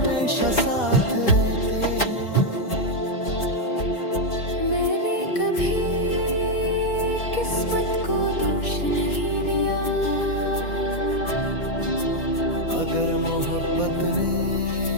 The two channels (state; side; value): late; right; 4.1 ms